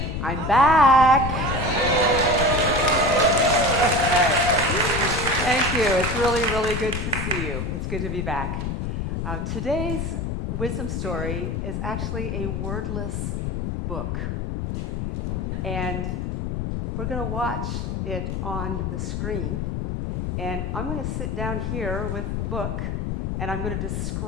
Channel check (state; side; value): noise; left; rumble, 2 dB below the sound